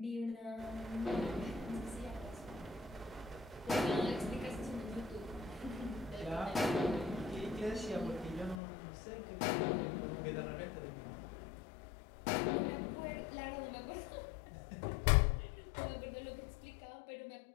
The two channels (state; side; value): drops out; right; at 8.6 s